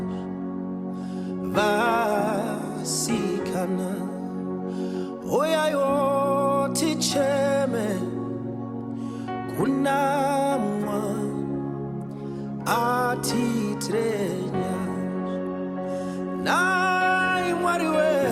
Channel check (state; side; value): identical; both; correlation 1.00